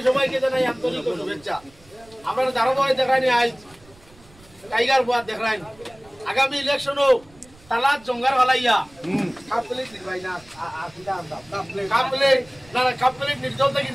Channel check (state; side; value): noise; right; rumble, 26 dB below the sound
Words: সবাইকে জানাই আন্তরিক শুভেচ্ছা। আপনারা ধারাবাহিক দেখানি আজ টাইগার বুয়া দেখাই আগামী ইলেকশনও তালাত জঙ্গার হলাইয়া কাপলেট নির্বাই না আসিদা আমরা কাপলেট না কাপলেট নির্দল থেকে